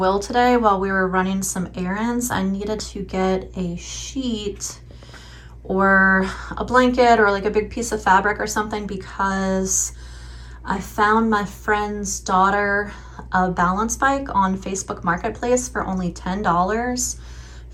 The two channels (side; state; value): both; identical; correlation 1.00